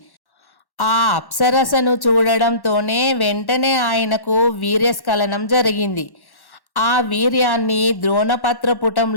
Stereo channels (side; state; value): right; late; 1.1 ms